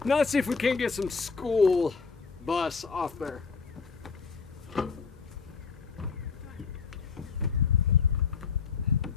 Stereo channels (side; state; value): right; quieter; 5.3 dB